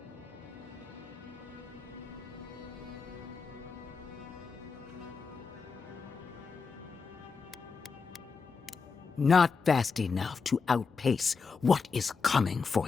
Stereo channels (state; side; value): quieter; right; 5.1 dB